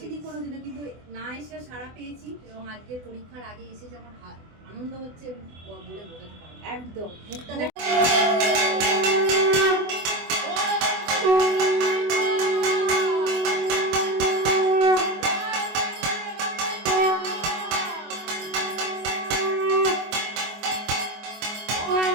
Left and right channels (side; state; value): left; late; 24 ms